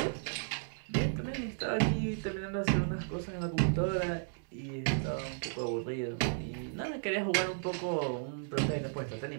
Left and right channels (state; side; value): silent; left; digital silence